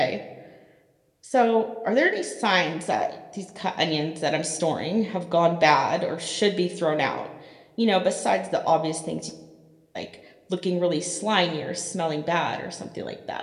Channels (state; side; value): identical; both; correlation 1.00